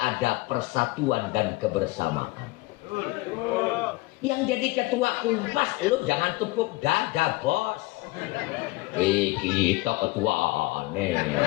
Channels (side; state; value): right; quieter; 21.7 dB